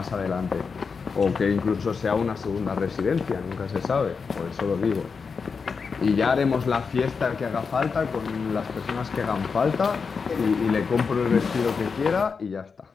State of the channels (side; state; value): right; quieter; 5.3 dB